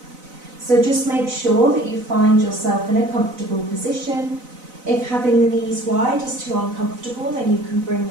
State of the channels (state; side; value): late; left; 4.0 ms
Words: So just make sure that you find yourself in a comfortable position. If having the knees wide is too uncomfortable, then you can bring